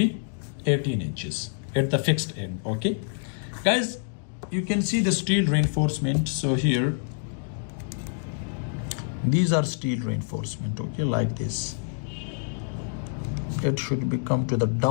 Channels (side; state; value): right; silent; digital silence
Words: 18 inches at the fixed end. Okay, guys, you can see the steel reinforcement. So here, these are steel reinforcement, okay, like this. It should be come to the